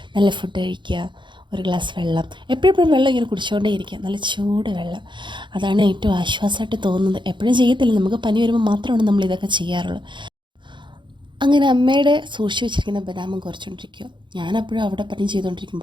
നല്ല ഫുഡ് കഴിക്കുക, ഒരു ഗ്ലാസ് വെള്ളം, എപ്പോഴും വെള്ളം ഇങ്ങനെ കുടിച്ചുകൊണ്ടേ ഇരിക്കുക, നല്ല ചൂട് വെള്ളം. അതാണ് ഏറ്റവും ആശ്വാസമായിട്ട് തോന്നുന്നത്. എപ്പോഴും ചെയ്യത്തില്ല, നമുക്ക് പനി വരുമ്പോൾ മാത്രമാണ് നമ്മൾ ഇതൊക്കെ ചെയ്യാറുള്ളത്. അങ്ങനെ അമ്മയുടെ സൂക്ഷിച്ച് വെച്ചിരിക്കുന്ന ബദാമും കുറച്ചുകൊണ്ടിരിക്കുക. ഞാനപ്പോഴും അവിടെ പണി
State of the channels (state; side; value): late; left; 0.23 ms